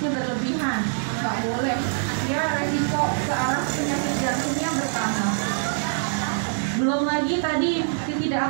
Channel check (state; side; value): silent; left; 62 dB below the other